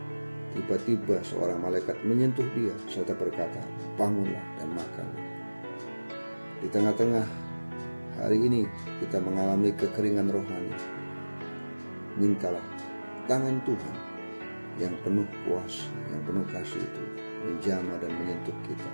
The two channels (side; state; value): both; inverted; correlation -1.00